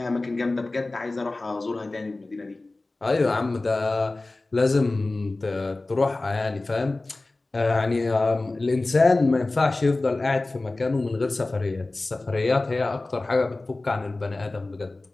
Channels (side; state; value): right; quieter; 3.1 dB